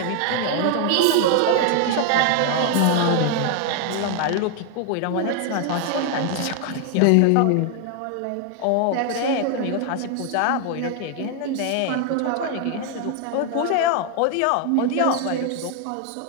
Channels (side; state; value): both; different; correlation 0.00